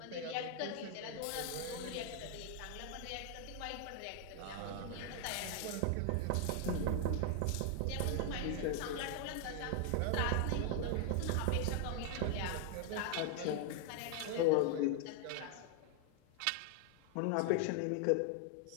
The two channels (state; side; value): different; both; correlation 0.00